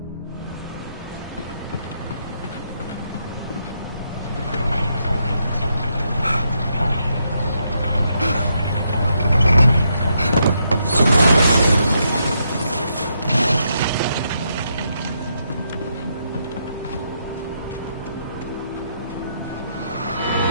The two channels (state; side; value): inverted; both; correlation -0.79